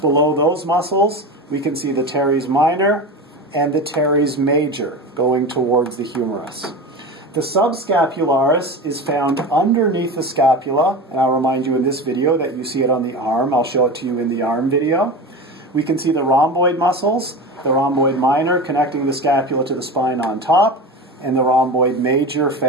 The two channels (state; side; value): normal; both; correlation 0.27